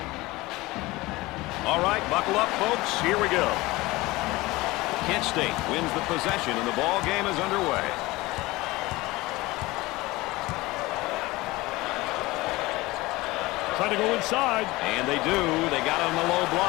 All right, buckle up, folks. Here we go. Kent State wins the possession, and the ball game is underway. Trying to go inside. And they do. They got it on the low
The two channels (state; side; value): quieter; right; 20.5 dB